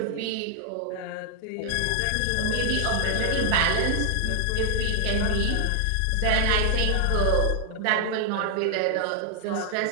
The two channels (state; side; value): different; both; correlation 0.00